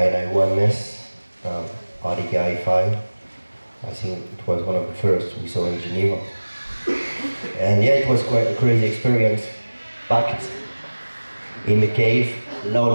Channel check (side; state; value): both; inverted; correlation -1.00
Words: RDK I5. I think it was one of the first we saw in Geneva. And yeah, it was quite a crazy experience. Packed in the cave,